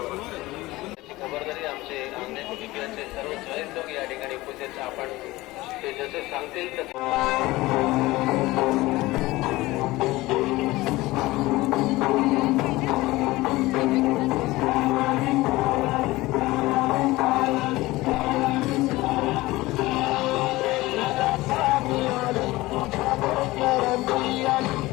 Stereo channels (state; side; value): quieter; right; 19.4 dB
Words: खबरदारी आमचे आमने कुटुंबियांचे सर्व स्वयंसेवक या ठिकाणी उपस्थित आपण ते जसे सांगतील तसे